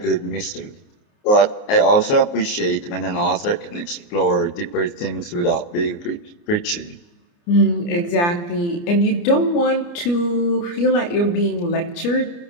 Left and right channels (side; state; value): right; late; 29 ms